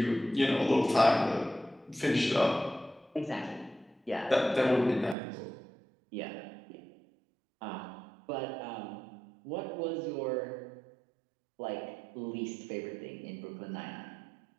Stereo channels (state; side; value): drops out; left; at 5.2 s